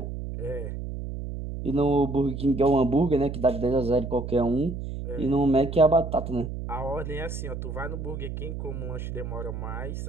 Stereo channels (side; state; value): right; noise; hum, 6 dB below the sound